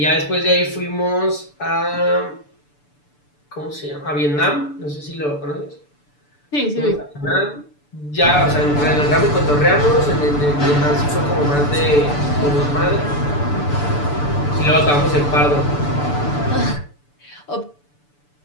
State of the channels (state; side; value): late; right; 6.9 ms